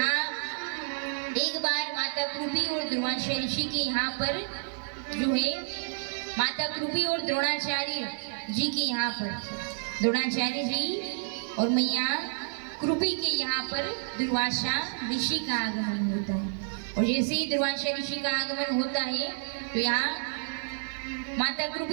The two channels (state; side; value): silent; left; digital silence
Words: एक बार माता कृपी और दुर्वासा ऋषि के यहाँ पर जो है, माता कृपी और द्रोणाचार्य जी के यहाँ पर, द्रोणाचार्य जी और मैया कृपी के यहाँ पर दुर्वासा ऋषि का आगमन होता है। और जैसे ही दुर्वासा ऋषि का आगमन होता है तो यहाँ माता